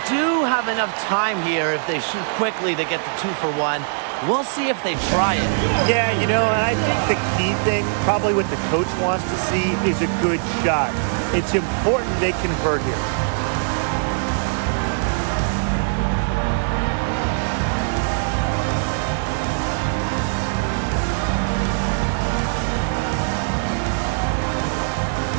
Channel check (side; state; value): left; silent; digital silence